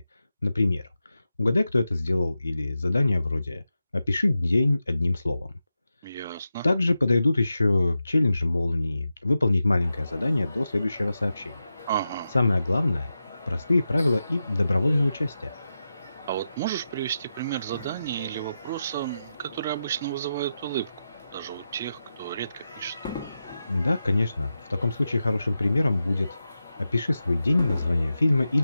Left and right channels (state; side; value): inverted; both; correlation -0.90